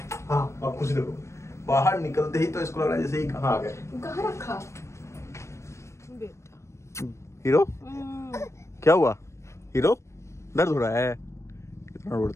हाँ आप कुछ देखो, बाहर निकलते ही तो इसको लग रहा है जैसे ही कहाँ आ गए। कहाँ रखा बेटा? हीरो क्या हुआ? हीरो दर्द हो रहा है? इतना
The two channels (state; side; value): late; right; 0.13 ms